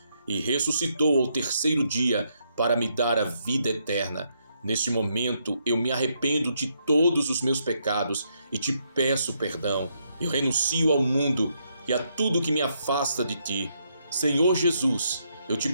e ressuscitou ao terceiro dia para me dar a vida eterna. Neste momento eu me arrependo de todos os meus pecados e te peço perdão. Eu renuncio ao mundo e a tudo que me afasta de ti. Senhor Jesus, eu te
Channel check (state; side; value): inverted; both; correlation -0.77